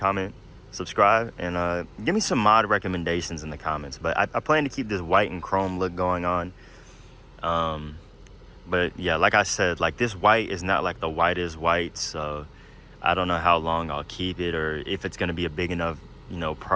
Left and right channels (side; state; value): both; identical; correlation 1.00